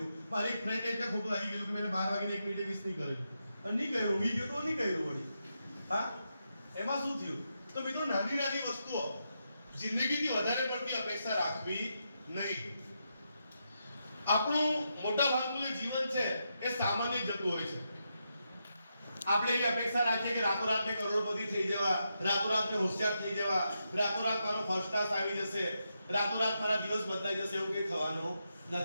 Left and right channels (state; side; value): inverted; both; correlation -0.84